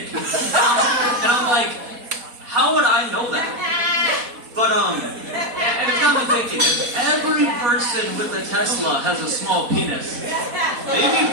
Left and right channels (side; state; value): left; late; 4.1 ms